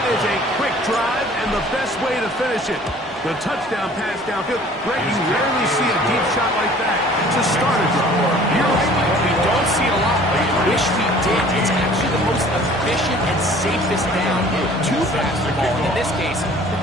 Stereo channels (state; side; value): normal; both; correlation 0.51